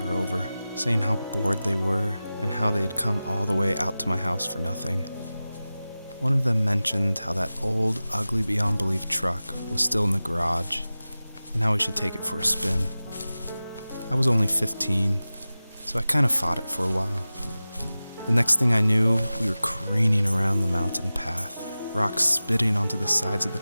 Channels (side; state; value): both; inverted; correlation -0.96